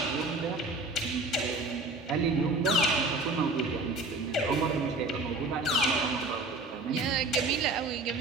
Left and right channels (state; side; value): quieter; left; 3.0 dB